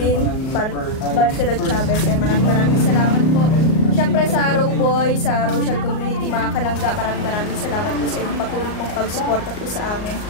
Barcelot Chavez. Maraming salamat po. Siyempre sa Rowboy, sa Rochelle Community, mga kalangga, maraming salamat po sa inyong patuloy pong pagsuporta po sa amin.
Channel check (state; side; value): late; right; 38 ms